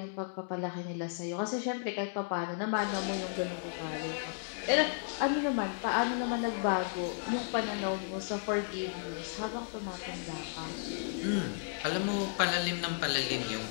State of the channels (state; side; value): silent; right; digital silence